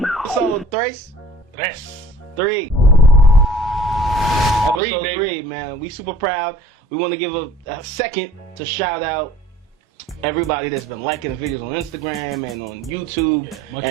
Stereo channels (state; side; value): normal; both; correlation 0.50